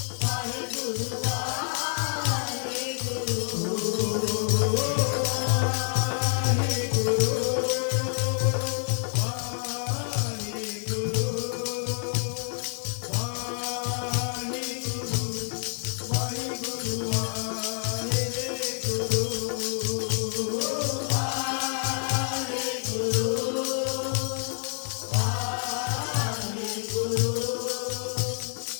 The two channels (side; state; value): right; silent; 60 dB below the other